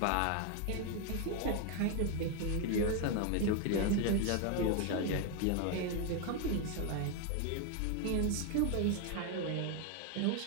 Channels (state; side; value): different; both; correlation 0.01